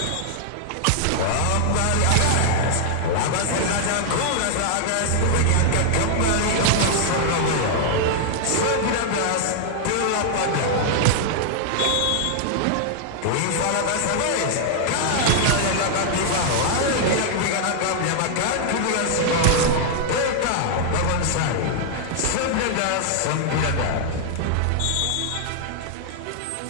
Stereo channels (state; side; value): different; both; correlation -0.01